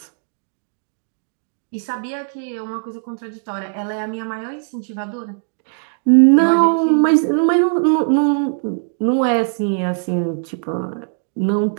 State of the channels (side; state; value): left; silent; digital silence